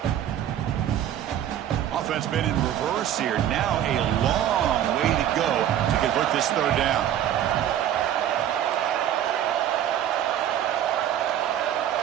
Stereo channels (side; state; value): left; quieter; 10.8 dB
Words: Offense been in reverse here. Now a long way to go to convert this third down.